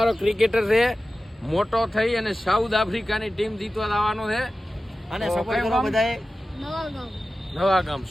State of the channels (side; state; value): both; normal; correlation 0.95